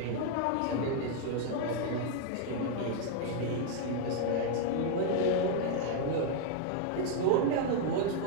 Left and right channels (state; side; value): different; both; correlation 0.00